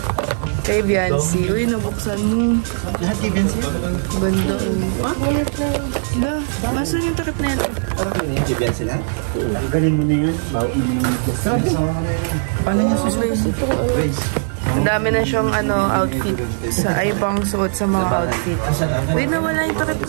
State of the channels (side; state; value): left; silent; 57 dB below the other